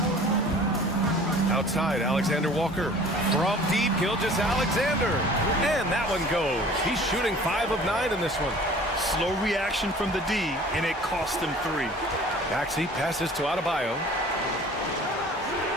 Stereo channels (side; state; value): both; normal; correlation 0.47